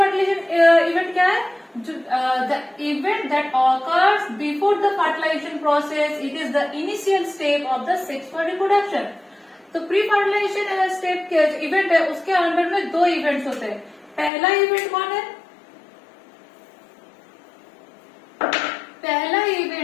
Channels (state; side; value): drops out; right; at 14.3 s